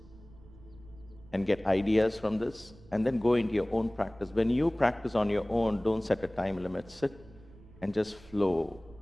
and get ideas from this, and then go into your own practice. When you practice on your own, don't set a time limit. Sit and just flow.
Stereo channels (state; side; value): noise; right; rumble, 22 dB below the sound